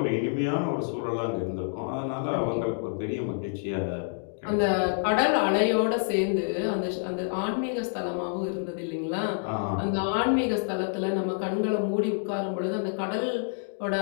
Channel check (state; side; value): silent; right; digital silence